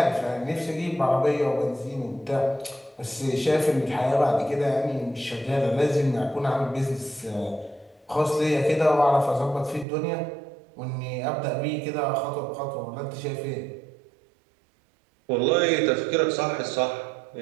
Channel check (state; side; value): drops out; left; at 9.9 s